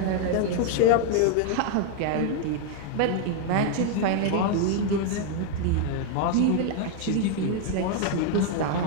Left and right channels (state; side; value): different; both; correlation 0.01